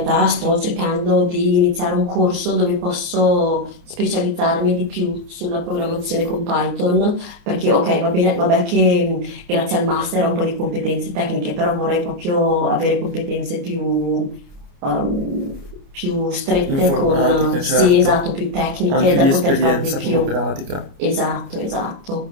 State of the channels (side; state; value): left; late; 29 ms